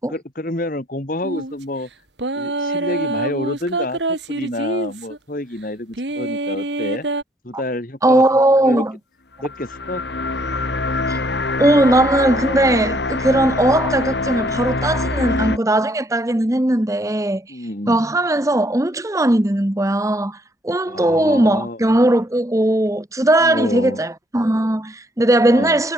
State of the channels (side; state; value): both; normal; correlation 0.66